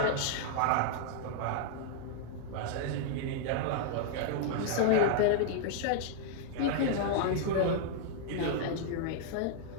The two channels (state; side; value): different; both; correlation -0.01